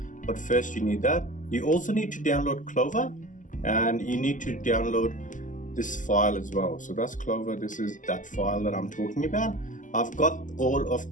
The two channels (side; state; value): right; late; 0.37 ms